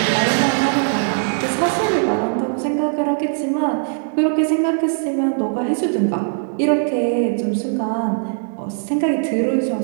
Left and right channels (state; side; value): silent; left; digital silence